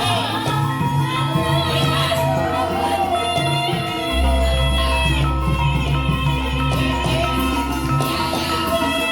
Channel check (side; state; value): both; identical; correlation 1.00